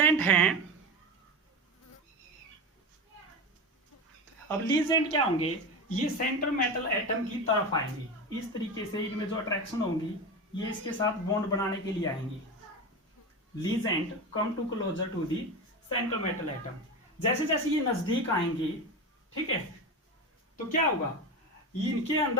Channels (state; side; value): normal; both; correlation 0.23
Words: हैं, अब लीजेंड क्या होंगे, ये सेंट्रल मेटल एटम की तरफ आएंगे। इस तरीके से इनमें जो अट्रैक्शन होंगी ये इसके साथ बॉन्ड बनाने के लिए आएंगे। Ligand come to closer to the central metal atom. जैसे जैसे ये नजदीक आएंगे, ठीक है, तो क्या होगा, इनके